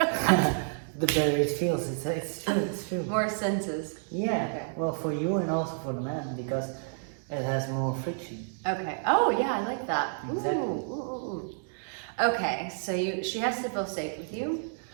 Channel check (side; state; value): left; silent; digital silence